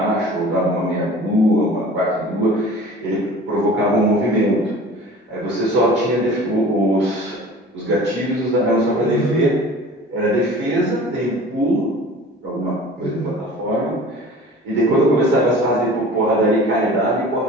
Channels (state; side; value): normal; both; correlation 0.43